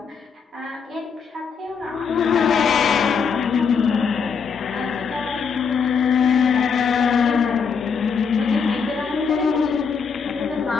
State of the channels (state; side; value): quieter; right; 6.0 dB